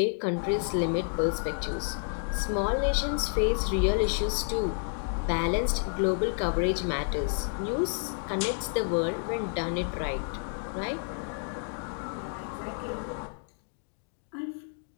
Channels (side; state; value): right; silent; 58 dB below the other